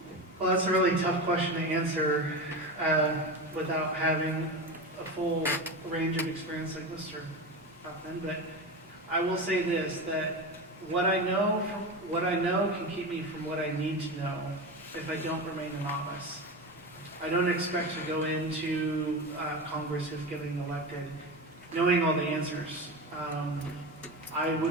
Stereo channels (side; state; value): both; normal; correlation 0.23